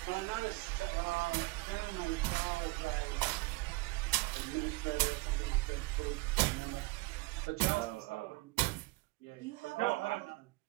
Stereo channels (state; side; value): quieter; left; 23.1 dB